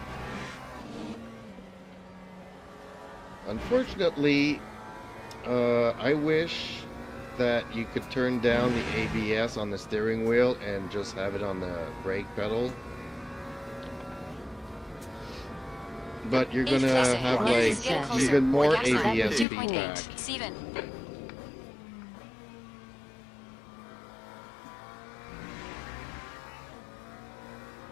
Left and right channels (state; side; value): drops out; right; at 19.5 s